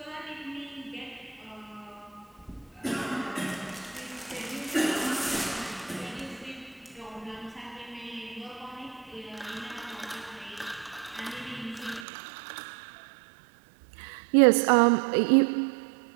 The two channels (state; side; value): drops out; left; at 12.1 s